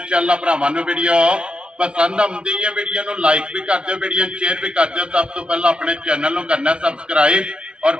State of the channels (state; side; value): late; left; 0.057 ms